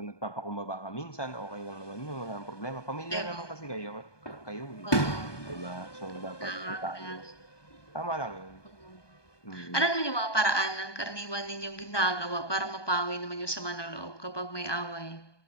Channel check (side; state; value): right; late; 1.2 ms